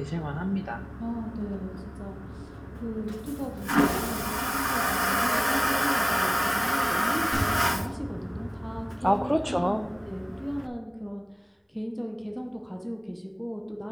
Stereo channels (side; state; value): both; identical; correlation 1.00